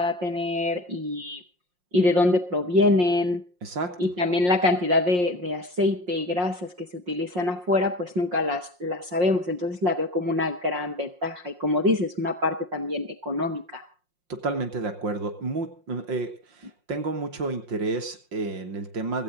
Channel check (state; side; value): late; left; 5.6 ms